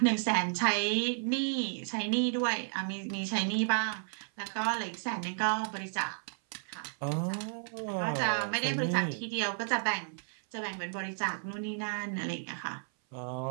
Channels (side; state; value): left; silent; 56 dB below the other